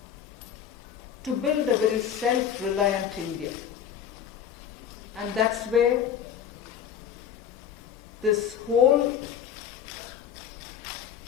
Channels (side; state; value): right; quieter; 8.8 dB